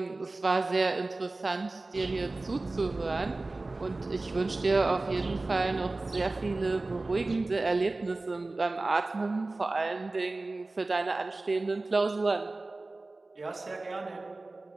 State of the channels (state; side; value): quieter; left; 3.2 dB